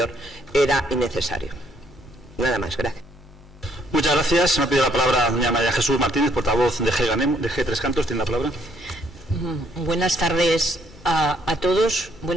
era innecesario. Nada más, gracias. Muchas gracias. Me ha pedido la palabra doña María Jesús Martínez, portavoz de G3 Cantos. Tiene la palabra. Buenas tardes a todos,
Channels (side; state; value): left; noise; hum, 23 dB below the sound